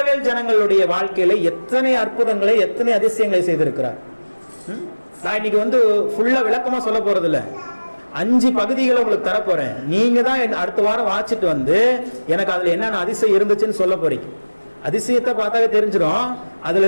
ஜனங்களுடைய வாழ்க்கையில எத்தனை அற்புதங்களை, எத்தனை அதிசயங்களை செய்திருக்கிறார். நான் இன்னைக்கு வந்து ஃபுல்லா விளக்கமா சொல்ல போறது இல்ல, 5 பகுதிகளை உங்களுக்கு தரப்போறேன். நீங்க தான் அடுத்த வாரம் வாசிட்டு வந்து எனக்கு அதுல என்னென்ன அதிசயம் இருந்துச்சுன்னு சொல்ல போறீங்க. அதிசயத்தை பார்த்தாவே தெரிஞ்சிடும். அதுல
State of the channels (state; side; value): inverted; both; correlation -1.00